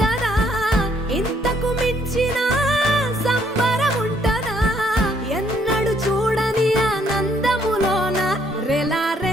ఇంతకు మించిన సంబరం ఉంటదా ఎన్నడు చూడని ఆనందములోన రెలా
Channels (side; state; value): both; normal; correlation 0.68